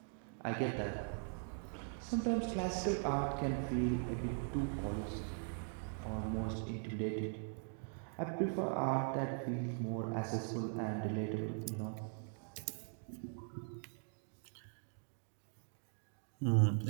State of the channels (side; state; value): left; silent; 50 dB below the other